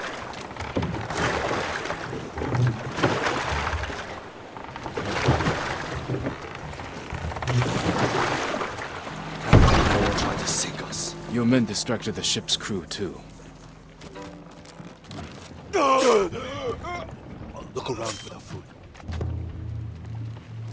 Tried to sink us. Your men distracted the ship's crew, too. Look around for the food.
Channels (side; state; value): both; identical; correlation 1.00